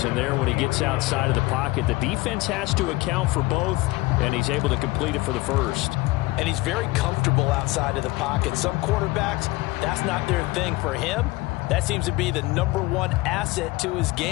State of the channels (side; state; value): right; quieter; 21.1 dB